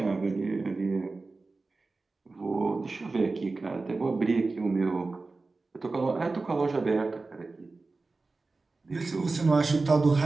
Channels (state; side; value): quieter; left; 3.6 dB